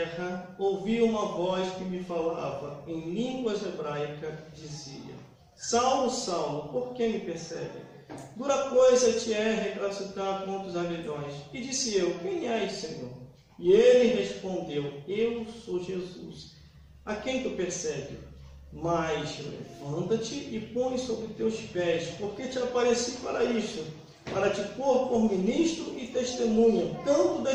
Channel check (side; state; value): both; identical; correlation 1.00